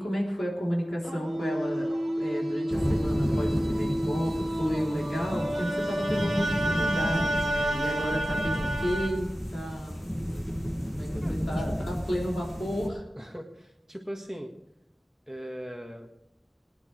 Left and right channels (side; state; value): both; normal; correlation 0.95